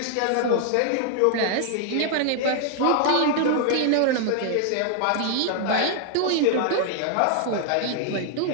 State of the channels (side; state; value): both; different; correlation 0.00